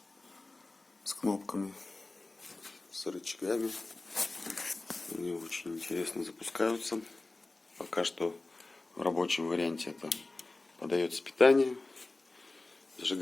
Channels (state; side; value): quieter; right; 3.1 dB